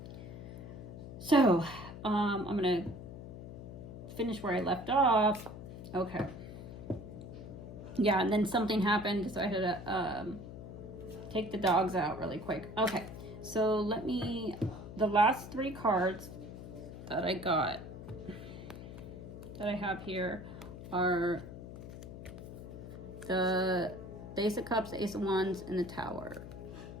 gonna finish where I left off. Okay. Yeah, and then something happened, so I had to take the dogs out really quick. Okay, so the last three cards that I have here are the Ace of Cups, the Ace of Wands, and the Tower.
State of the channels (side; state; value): left; noise; hum, 11 dB below the sound